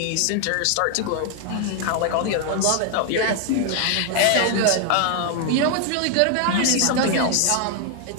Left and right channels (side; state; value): both; different; correlation 0.00